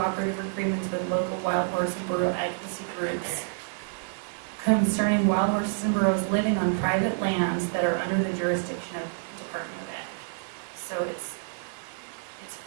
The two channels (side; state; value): left; silent; digital silence